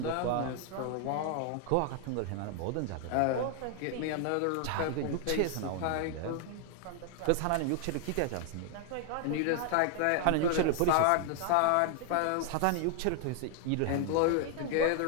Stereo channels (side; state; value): both; different; correlation 0.00